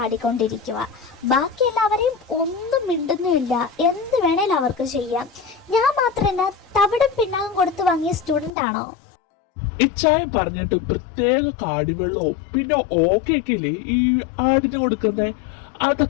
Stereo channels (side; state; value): right; drops out; at 8.5 s